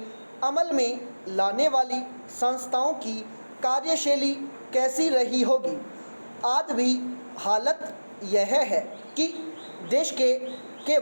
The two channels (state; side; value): inverted; both; correlation -1.00